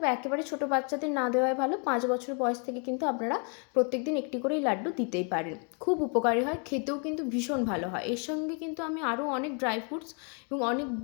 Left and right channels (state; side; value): quieter; right; 38.6 dB